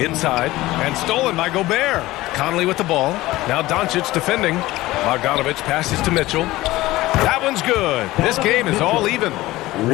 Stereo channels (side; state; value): right; quieter; 17.9 dB